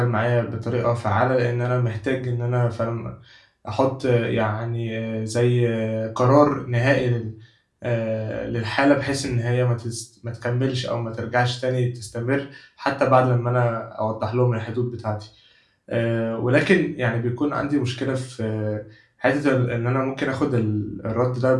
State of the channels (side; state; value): both; identical; correlation 1.00